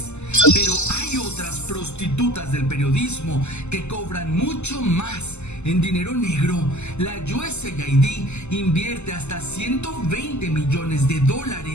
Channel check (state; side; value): late; right; 0.82 ms